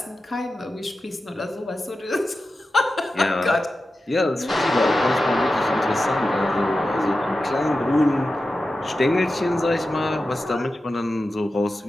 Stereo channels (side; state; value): both; normal; correlation 0.93